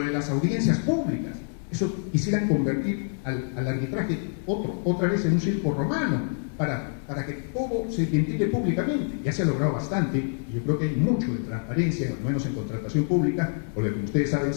de las audiencias públicas, eso quisieran convertir al arbitraje otra vez en un circo romano, para que todo se ventile públicamente. Ya se ha logrado bastante, y yo creo que hay mucho de transparencia, al menos en contratación pública, porque como ustedes saben,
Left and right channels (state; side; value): silent; right; digital silence